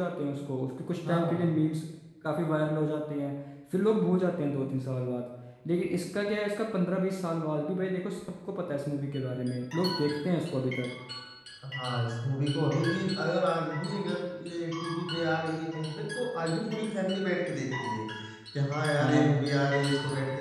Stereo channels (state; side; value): identical; both; correlation 1.00